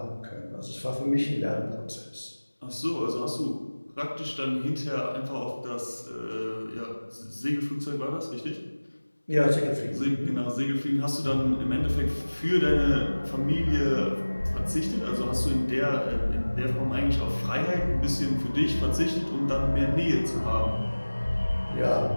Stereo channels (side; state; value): both; inverted; correlation -1.00